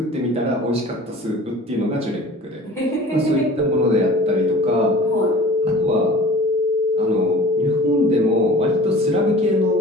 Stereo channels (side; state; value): both; normal; correlation 0.43